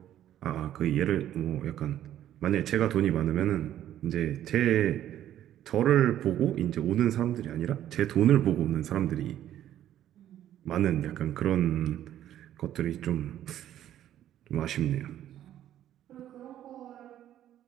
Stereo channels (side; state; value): left; quieter; 11.8 dB